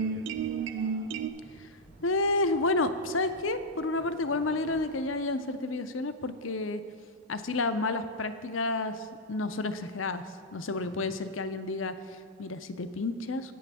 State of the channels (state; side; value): normal; both; correlation -0.04